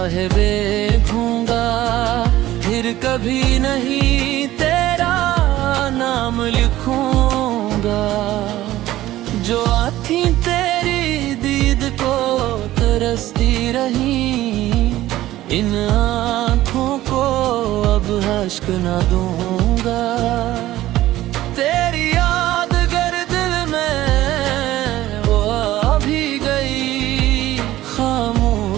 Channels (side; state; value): left; quieter; 15.2 dB